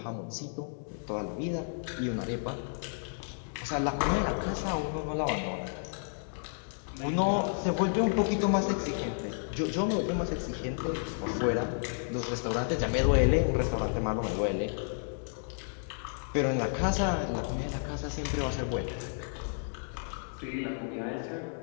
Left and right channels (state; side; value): silent; right; digital silence